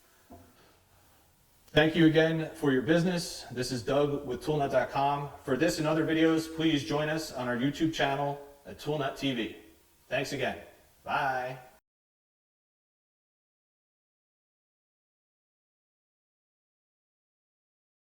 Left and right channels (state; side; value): identical; both; correlation 1.00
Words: Thank you again for your business. This is Doug with ToolNut.com. For this and other videos, please join us on our YouTube channel at ToolNut TV. Thanks again. Bye.